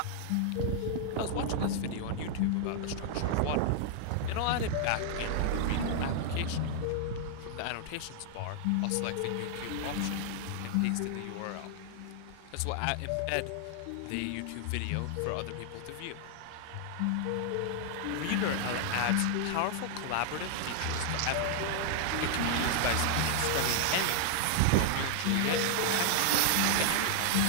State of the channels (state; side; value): different; both; correlation -0.01